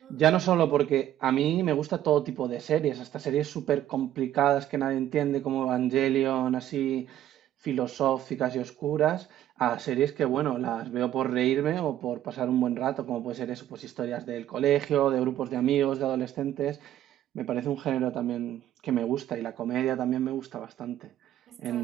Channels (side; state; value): left; quieter; 12.1 dB